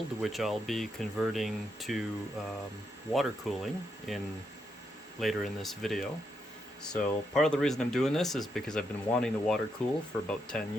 which I'll be converting to water cooling later in this video. So part of the reason I'm doing this is because I've been wanting to water cool for about 10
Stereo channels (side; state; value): both; normal; correlation 0.80